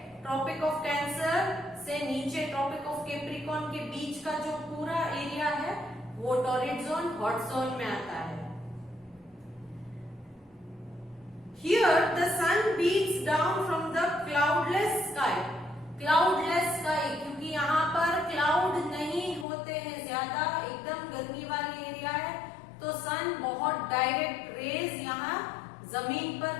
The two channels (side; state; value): right; drops out; at 19.5 s